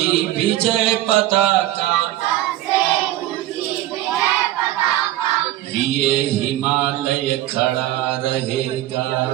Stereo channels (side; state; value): left; quieter; 14.7 dB